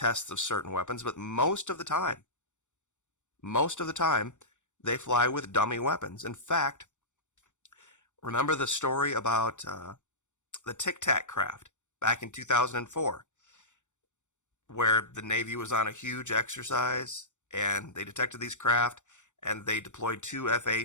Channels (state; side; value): late; right; 0.85 ms